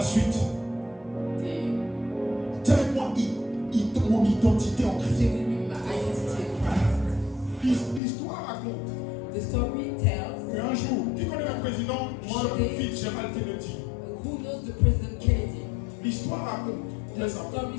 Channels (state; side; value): drops out; right; at 8.0 s